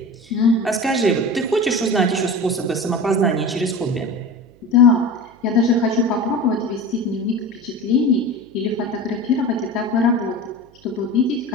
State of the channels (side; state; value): right; noise; hum, 28 dB below the sound